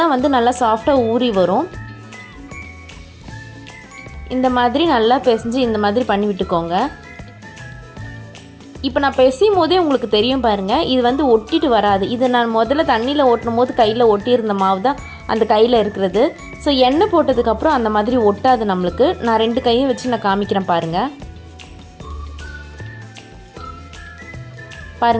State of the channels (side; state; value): both; identical; correlation 1.00